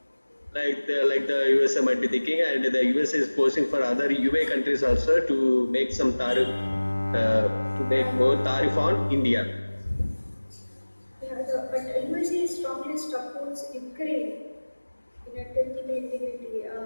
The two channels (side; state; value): both; inverted; correlation -1.00